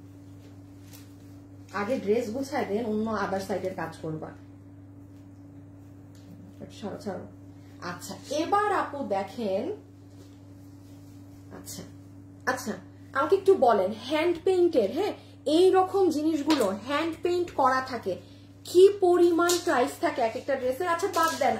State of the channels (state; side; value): identical; both; correlation 1.00